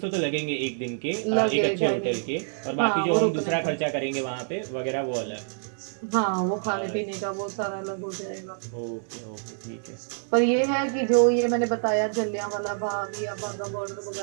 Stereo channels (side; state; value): left; silent; digital silence